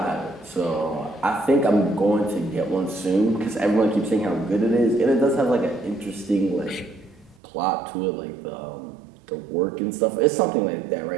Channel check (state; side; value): drops out; left; at 7.4 s